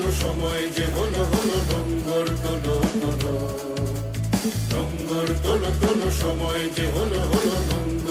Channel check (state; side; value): identical; both; correlation 1.00